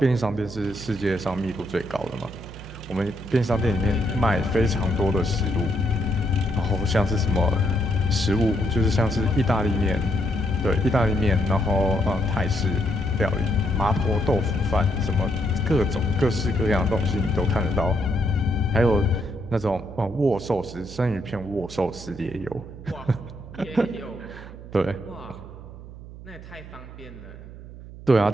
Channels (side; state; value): right; noise; hum, 15 dB below the sound